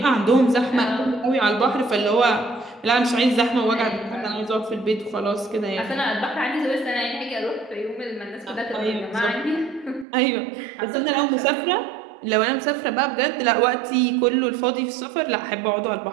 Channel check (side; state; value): left; drops out; at 10.1 s